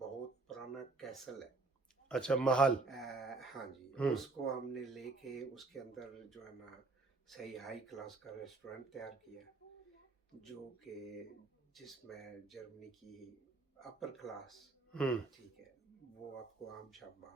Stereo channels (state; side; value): quieter; left; 3.6 dB